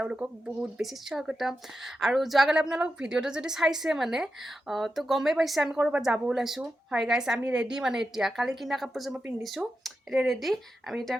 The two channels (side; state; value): both; normal; correlation 0.89